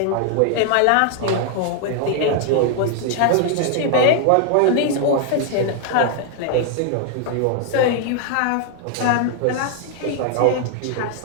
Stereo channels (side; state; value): both; different; correlation 0.00